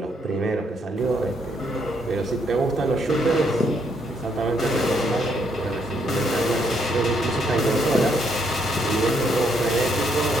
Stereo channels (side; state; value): both; normal; correlation 0.73